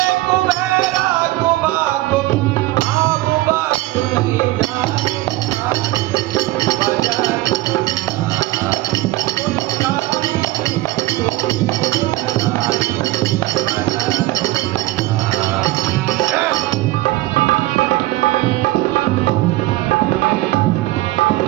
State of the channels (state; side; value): quieter; left; 18.1 dB